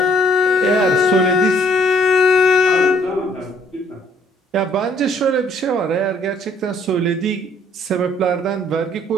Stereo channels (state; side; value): normal; both; correlation 0.63